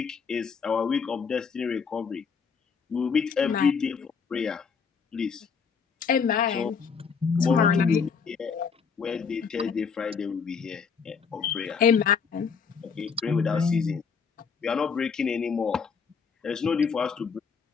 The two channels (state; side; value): quieter; right; 5.9 dB